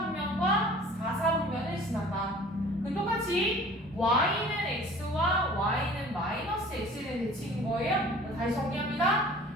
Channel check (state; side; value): normal; both; correlation 0.47